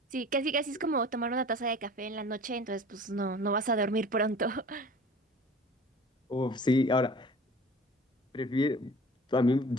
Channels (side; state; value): both; normal; correlation 0.43